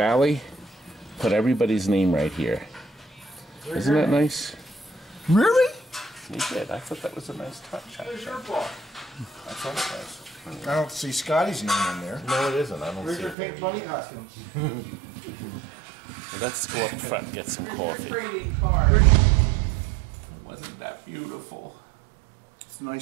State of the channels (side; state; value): left; drops out; at 13.4 s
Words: put everybody's name right here. Isn't that nice? Really? He did. I thought that was a nice touch. Where's your ball? I thought it was. I don't see Scotty's name in there. No, it isn't. I don't Where's see your it. pink bunny costumes? Well, let's go up front and get some coffee. Wasn't that beautiful? It's a